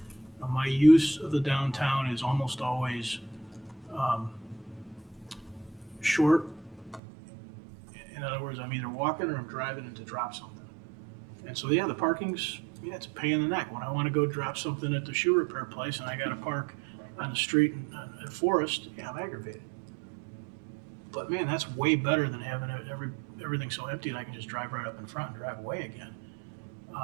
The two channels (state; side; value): drops out; left; at 7.0 s